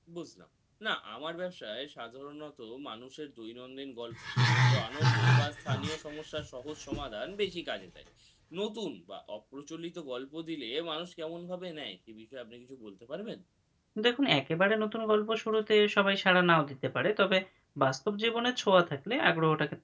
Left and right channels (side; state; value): both; identical; correlation 1.00